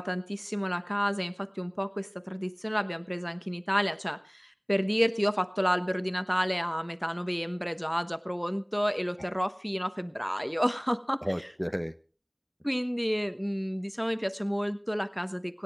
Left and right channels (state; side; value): identical; both; correlation 1.00